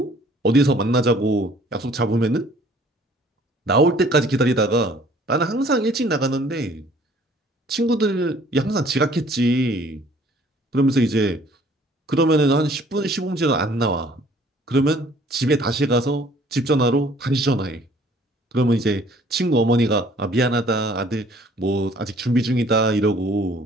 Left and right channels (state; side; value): normal; both; correlation 0.56